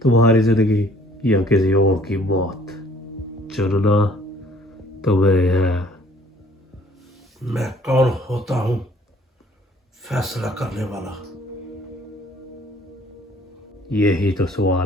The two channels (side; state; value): both; normal; correlation 0.57